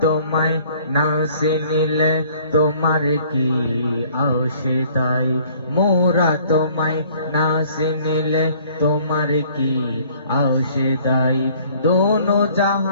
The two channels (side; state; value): both; inverted; correlation -0.57